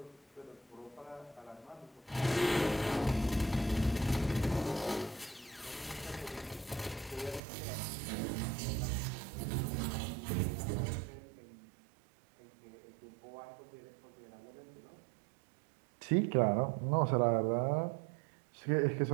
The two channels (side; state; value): left; drops out; at 7.4 s